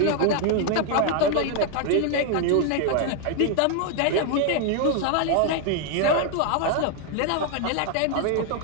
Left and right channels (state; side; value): different; both; correlation 0.01